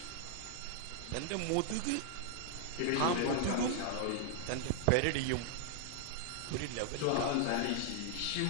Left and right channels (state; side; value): different; both; correlation -0.01